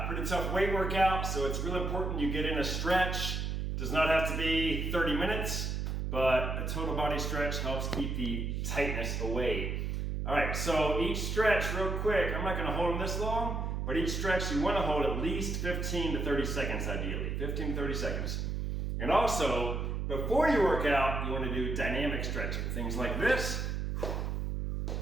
pretty tough weight workout, so it's really important you get in a stretch. Does not have to be 30 minutes, but a total body stretch helps keep the tightness away. All right, so each stretch, real quick, I'm not gonna hold them this long, but each stretch you wanna hold at least 15 to 30 seconds ideally, 15 to 30 seconds. And also, before you work out, you wanna do dynamic stretching. Things like this,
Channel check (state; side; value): noise; right; hum, 1 dB below the sound